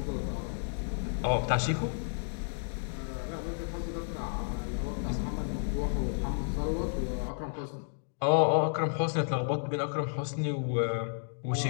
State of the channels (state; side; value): silent; right; digital silence